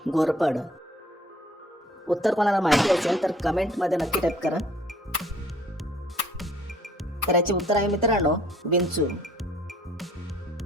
घोरपड. उत्तर कोणाला माहिती असेल तर कमेंटमध्ये नक्की टाईप करा. तर याचे उत्तर आहे मित्रांनो विंचू.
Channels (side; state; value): both; normal; correlation 0.57